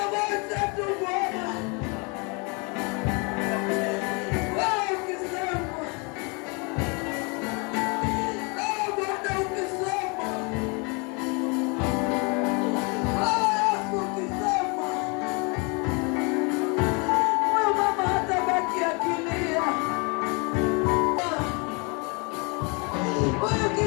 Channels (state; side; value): quieter; right; 31.7 dB